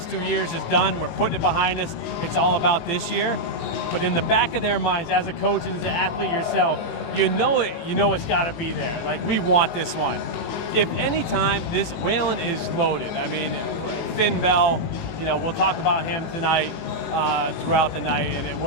2 years is done. We're putting it behind us. It's all about this year. But in the back of their minds, as a coach and as an athlete yourself, you know it's got to be there. Like, we want this one. If any time, this Wayland is loaded. I mean, Finn Bell, we'll talk about him tonight, throughout the night, and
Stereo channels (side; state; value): right; late; 19 ms